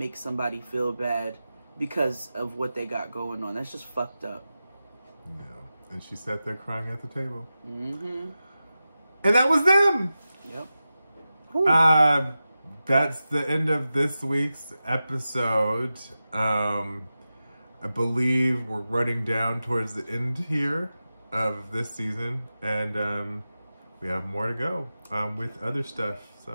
somebody feel bad because of what they got going on. That's just fucked up. Yeah, and she sat there crying at the table. And that was them. Yep. That's the end of this week's episode. I believe we're running down towards the end here of this season, and we have more to go with other stuff.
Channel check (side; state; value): both; inverted; correlation -0.94